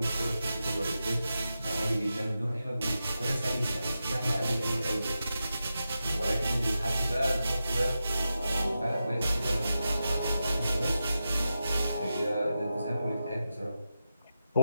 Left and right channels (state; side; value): inverted; both; correlation -0.90